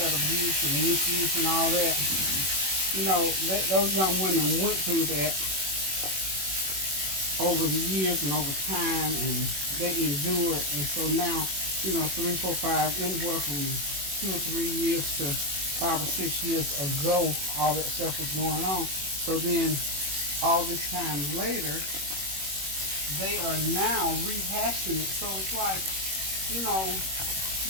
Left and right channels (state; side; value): late; left; 21 ms